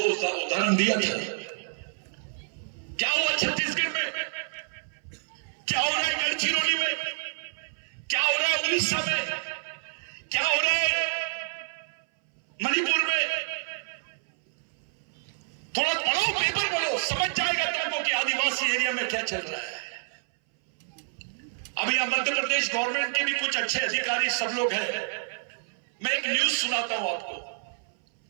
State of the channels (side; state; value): left; silent; 58 dB below the other